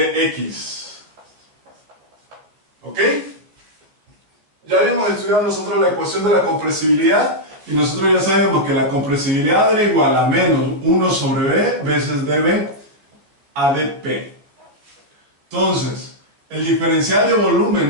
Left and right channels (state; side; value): late; left; 14 ms